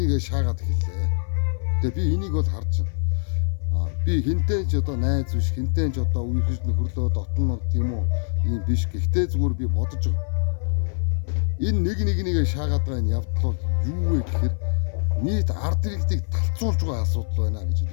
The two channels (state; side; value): silent; right; 57 dB below the other